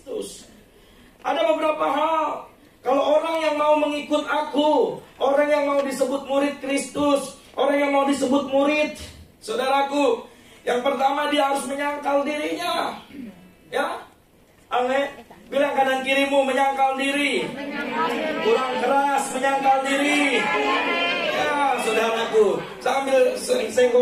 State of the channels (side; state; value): both; identical; correlation 1.00